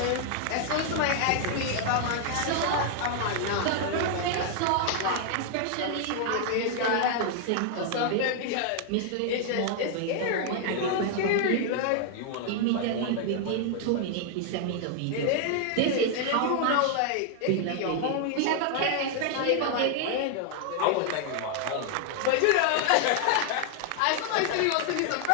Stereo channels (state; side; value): different; both; correlation 0.00